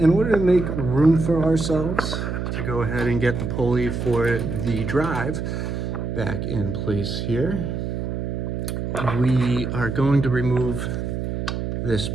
order to make room for ourselves to go ahead and get the pulley for the drive back in place here, we are going to remove this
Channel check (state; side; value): noise; right; hum, 3 dB below the sound